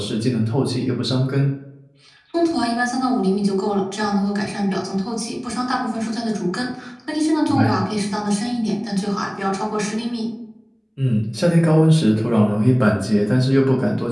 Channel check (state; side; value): identical; both; correlation 1.00